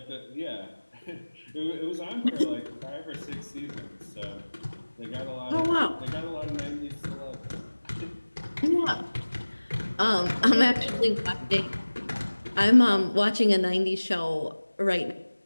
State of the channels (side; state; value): both; inverted; correlation -1.00